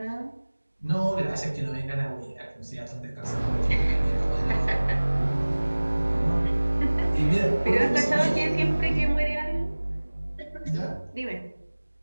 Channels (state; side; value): inverted; both; correlation -1.00